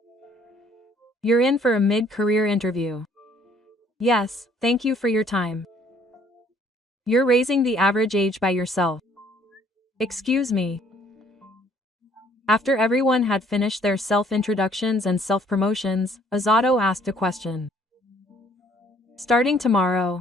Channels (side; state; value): both; normal; correlation 0.61